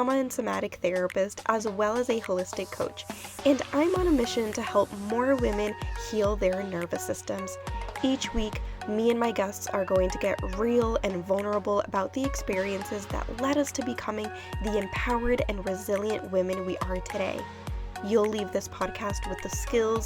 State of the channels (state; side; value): identical; both; correlation 1.00